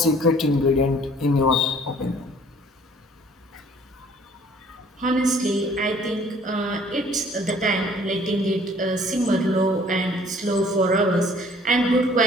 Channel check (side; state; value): both; normal; correlation 0.55